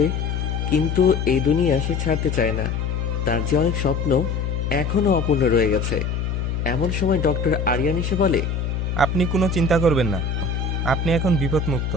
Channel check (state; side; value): noise; left; hum, 2 dB below the sound